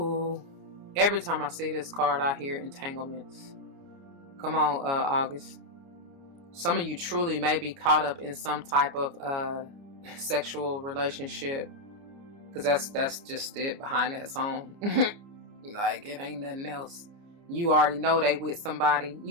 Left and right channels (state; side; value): late; left; 29 ms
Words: Every time I see this card, I hear entanglements. Come on, August. Some of you truly may be caught up in some type of sexual relationship. Because that's just it behind that song. Like, it ain't nothing else. You already know they with somebody.